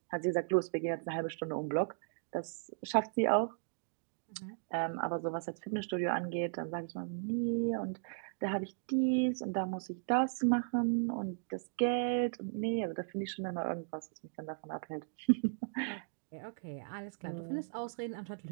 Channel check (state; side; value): silent; left; digital silence